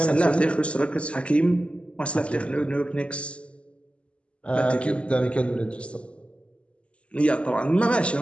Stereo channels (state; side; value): late; right; 0.057 ms